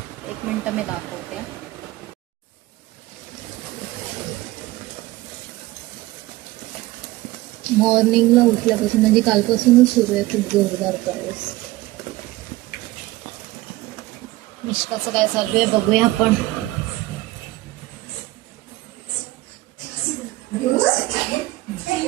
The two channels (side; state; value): left; quieter; 18.6 dB